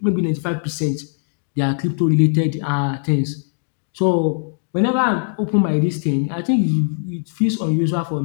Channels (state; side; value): silent; right; digital silence